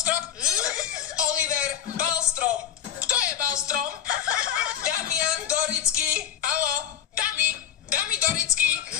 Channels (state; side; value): quieter; right; 9.8 dB